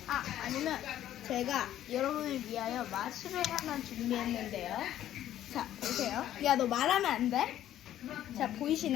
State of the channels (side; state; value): right; quieter; 12.1 dB